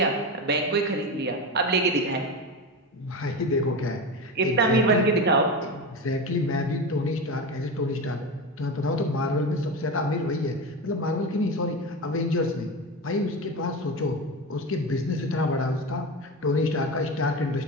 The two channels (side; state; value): both; normal; correlation 0.22